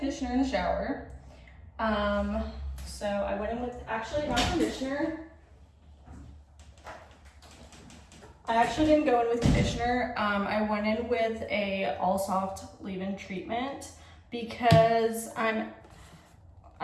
in the shower. So I went in with, actually not conditioner. I actually didn't go in with conditioner. I went in with a all soft leave-in treatment because I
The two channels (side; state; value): both; identical; correlation 1.00